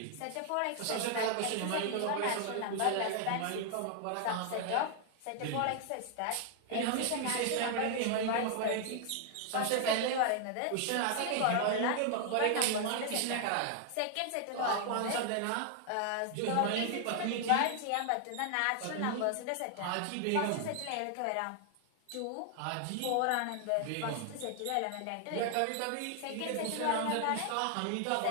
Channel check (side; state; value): both; different; correlation 0.00